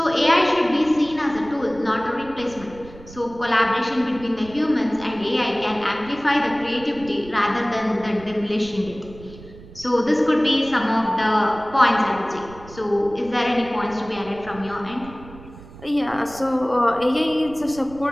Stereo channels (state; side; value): noise; right; rumble, 18 dB below the sound